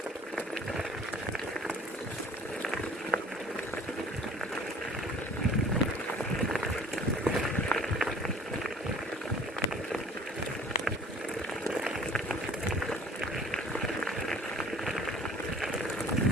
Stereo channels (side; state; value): both; normal; correlation 0.49